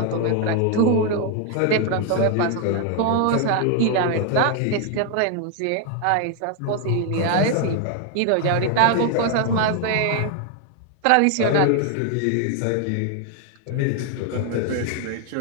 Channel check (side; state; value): both; different; correlation 0.01